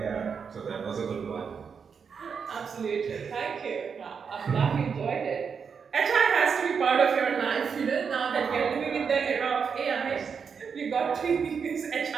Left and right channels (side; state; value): left; quieter; 6.2 dB